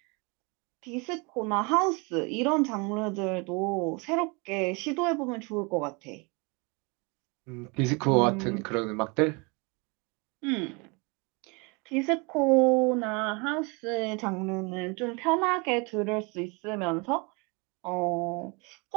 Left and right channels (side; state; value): left; quieter; 29.9 dB